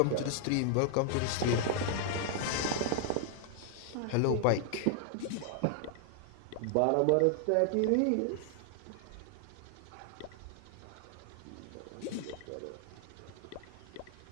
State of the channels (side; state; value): both; different; correlation 0.00